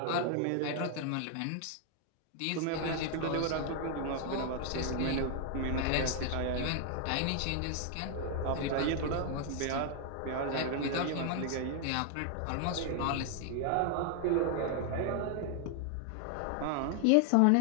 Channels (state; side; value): different; both; correlation 0.00